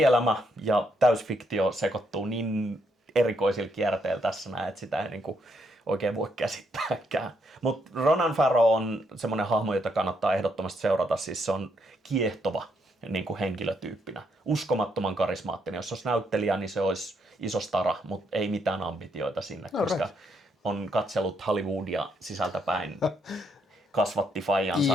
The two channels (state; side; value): normal; both; correlation 0.75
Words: ja täysfiktio sekoittuu niin erikoisilla kierteillä tässä näin, että sitä ei niinku oikein voi käsittääkään. Mutta Ronan Farrow on semmoinen hahmo, jota kannattaa ehdottomasti seurata. Siis se on kiehtova niin kuin henkilötyyppinä. Uskomattoman karismaattinen. Jos olisi näyttelijä, niin se olisi iso stara, mutta ei mitään ambitioita sinne, koska on katsellut Hollywoodia sisältäpäin. Kasvatti faijansa,